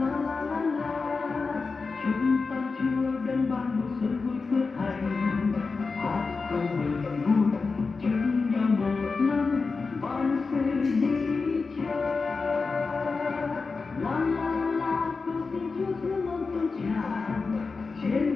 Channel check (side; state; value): right; quieter; 4.4 dB